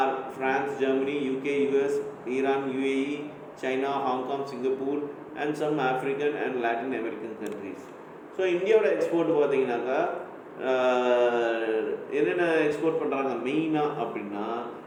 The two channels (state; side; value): identical; both; correlation 1.00